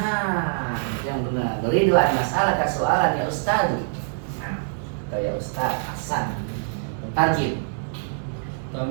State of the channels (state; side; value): silent; left; digital silence